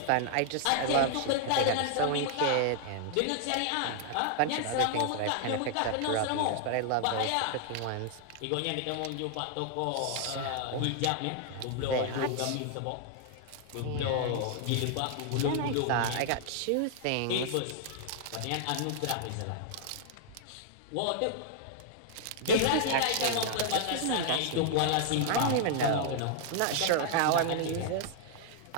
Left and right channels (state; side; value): different; both; correlation 0.00